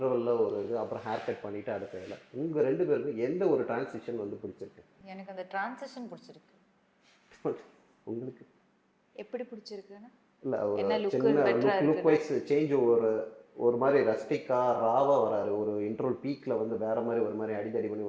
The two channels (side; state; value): both; identical; correlation 1.00